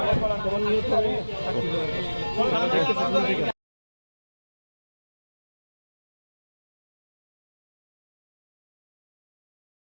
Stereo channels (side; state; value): both; inverted; correlation -1.00